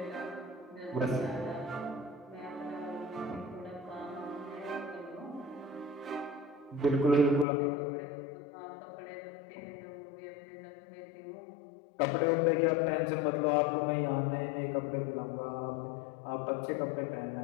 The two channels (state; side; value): drops out; right; at 7.5 s